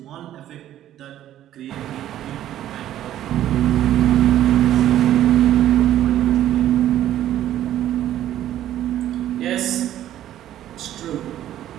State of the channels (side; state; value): left; quieter; 12.3 dB